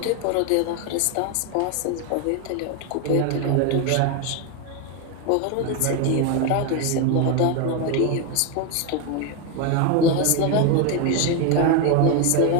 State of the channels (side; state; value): both; different; correlation 0.02